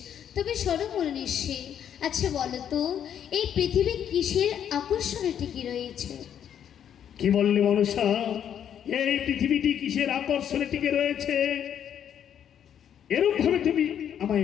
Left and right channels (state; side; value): quieter; right; 9.3 dB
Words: তবে শোনো মুনি ঋষি, আচ্ছা বলো তো, এই পৃথিবী কিসের আকর্ষণে টিকে রয়েছে? কি বললে মনসা? এই পৃথিবীটি কিসের আকর্ষণে টিকে রয়েছে? এরূপ ভাবে তুমি